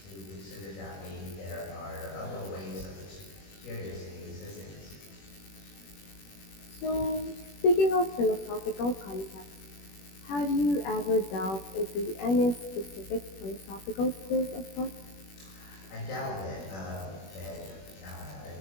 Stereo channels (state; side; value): late; right; 21 ms